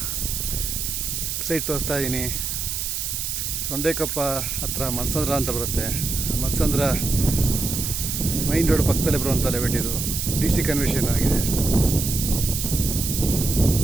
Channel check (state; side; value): noise; right; hiss, 3 dB below the sound